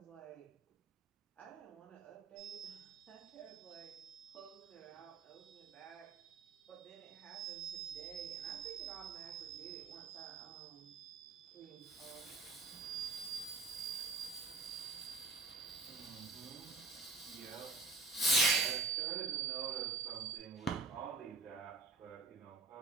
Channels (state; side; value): quieter; left; 3.6 dB